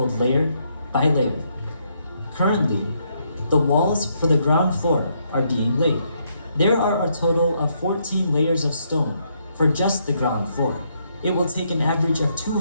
layer by layer. Currently, the walls for the ground floor are being laid. There are a total of 14 layers of stone for just the ground floor. It will take an average of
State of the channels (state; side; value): inverted; both; correlation -0.75